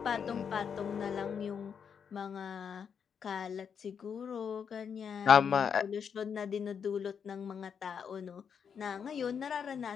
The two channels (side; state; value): right; quieter; 7.1 dB